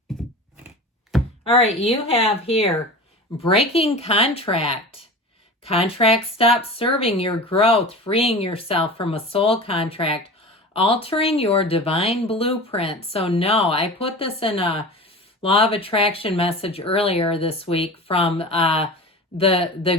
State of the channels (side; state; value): both; normal; correlation 0.33